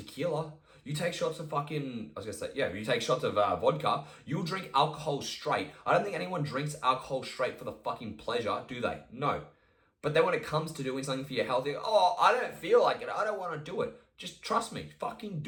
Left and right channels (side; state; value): both; identical; correlation 1.00